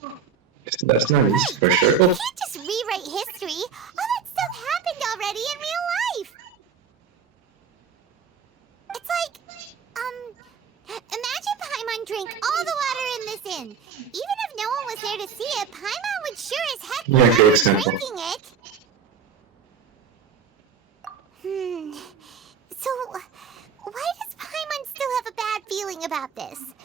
That's not easy for sure. You can't just rewrite history. All that stuff happened already in real life. It's like, imagine Paimon drank all the water in this inn. Even if no one was there to see it, Paimon would sure as heck be drinking it. So, why does Paimon still have a bad feeling about this?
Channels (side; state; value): left; quieter; 6.4 dB